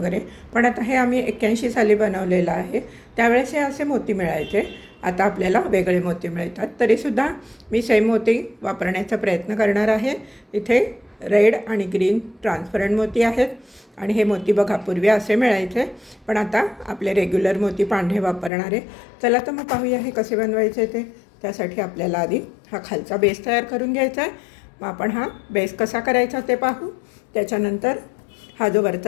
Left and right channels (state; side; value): drops out; right; at 18.5 s